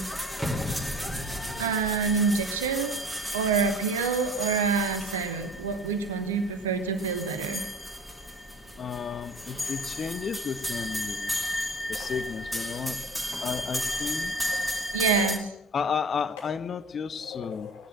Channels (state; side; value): normal; both; correlation 0.40